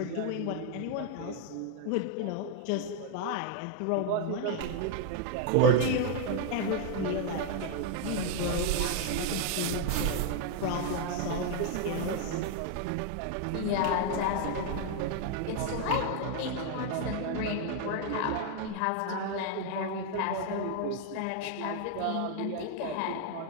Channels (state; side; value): different; both; correlation 0.00